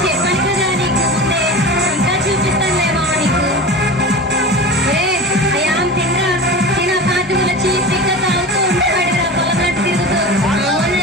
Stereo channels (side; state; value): both; normal; correlation 0.30